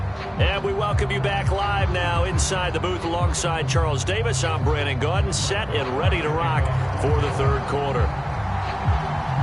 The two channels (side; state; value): both; identical; correlation 1.00